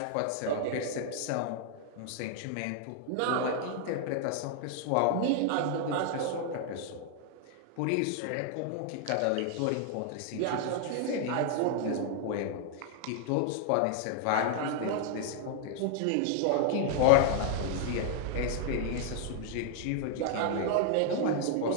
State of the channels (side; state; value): both; different; correlation 0.00